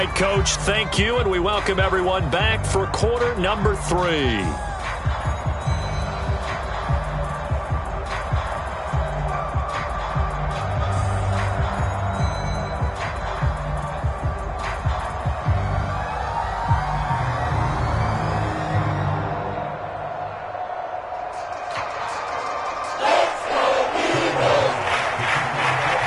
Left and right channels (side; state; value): both; identical; correlation 1.00